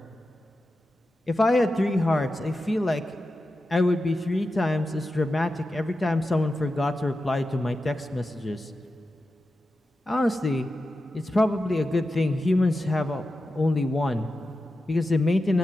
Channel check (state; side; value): normal; both; correlation 0.91